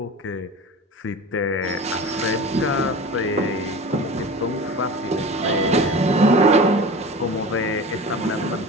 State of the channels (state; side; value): normal; both; correlation 0.34